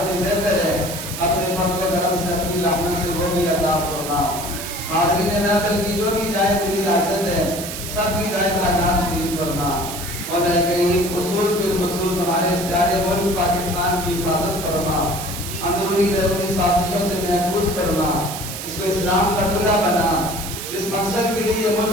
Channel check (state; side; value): noise; right; hiss, 8 dB below the sound